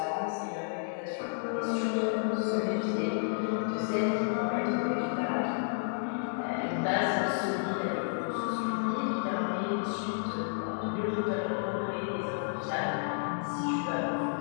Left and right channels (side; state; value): right; silent; digital silence